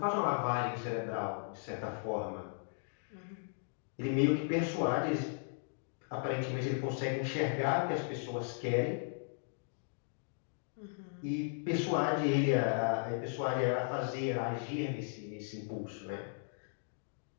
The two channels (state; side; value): silent; right; digital silence